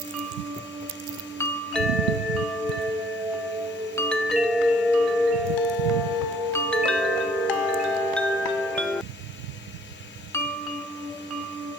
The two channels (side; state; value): both; normal; correlation 0.60